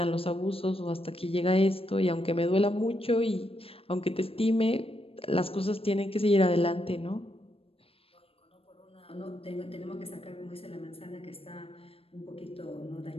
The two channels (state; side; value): late; right; 0.28 ms